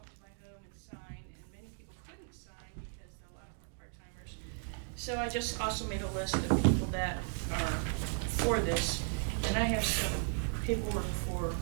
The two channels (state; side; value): silent; left; 54 dB below the other